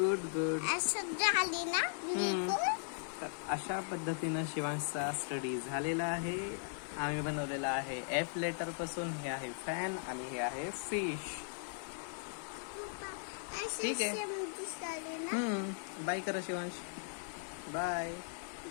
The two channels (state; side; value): silent; right; 52 dB below the other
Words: असं झाली ना बिलकुल. तर अशा पद्धतीनं शिवांशचा स्टडी झालेला आहे. आम्ही बनवलेला आहे एफ लेटर पासून. हे आहे फॅन आणि हे आहे फिश. ठीक आहे. दिसले ना. बाय करा शिवांश. बाय.